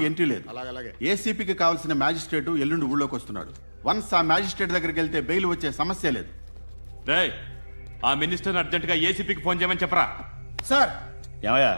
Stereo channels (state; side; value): inverted; both; correlation -1.00